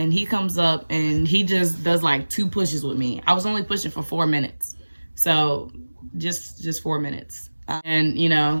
he comes up, and he just does like 2 pushes with me. I was only pushing for 4 minutes. So just 4 minutes. And, you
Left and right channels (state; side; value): inverted; both; correlation -1.00